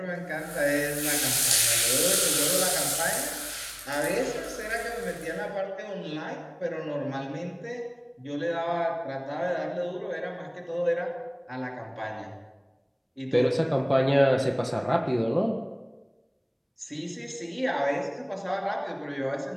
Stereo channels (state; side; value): identical; both; correlation 1.00